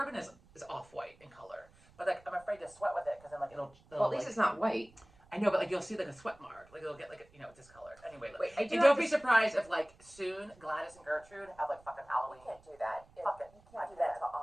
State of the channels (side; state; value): right; noise; rumble, 27 dB below the sound